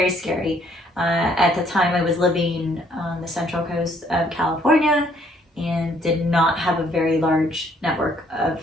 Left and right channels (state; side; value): normal; both; correlation 0.65